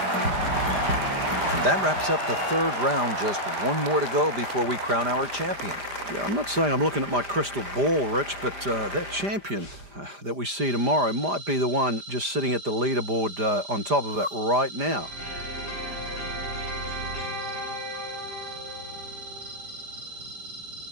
that wraps up the third round. Just one more to go before we crown our champion. Yeah, I'm not saying I'm looking at my crystal ball, Rich, but that champion that we see tomorrow might be the one just sitting at the leaderboard on top of it right now.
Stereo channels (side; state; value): left; late; 5.0 ms